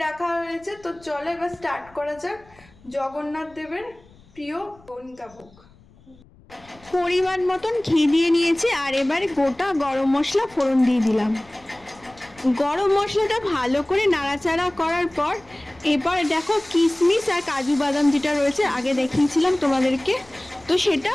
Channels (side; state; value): left; noise; rumble, 27 dB below the sound